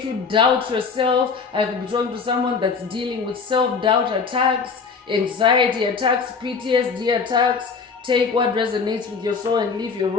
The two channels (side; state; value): right; quieter; 5.3 dB